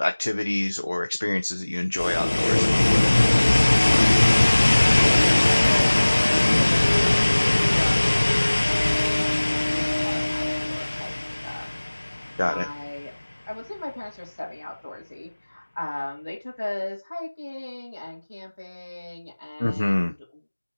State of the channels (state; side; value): inverted; both; correlation -1.00